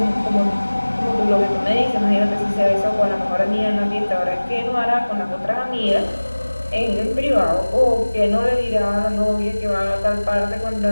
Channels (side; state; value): both; inverted; correlation -1.00